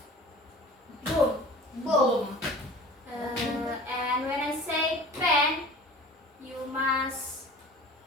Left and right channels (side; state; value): both; normal; correlation 0.41